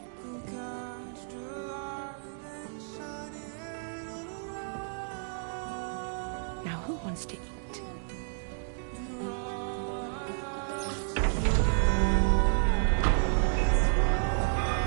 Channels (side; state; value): left; silent; digital silence